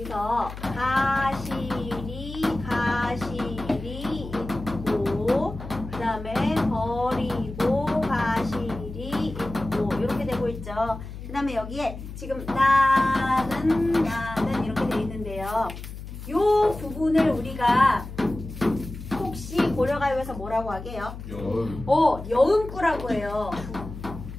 가시리 있고, 그 다음에 버리고 가시리 있고 이렇게 되고 있죠. 되죠. 그 다음에 여기에 지금 나는 이렇게 돼 있는데요. 요 부분을 우리가 혹시 고려가요에서 뭐라고 하게요? 여음구라고 해요.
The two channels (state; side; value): noise; left; hum, 11 dB below the sound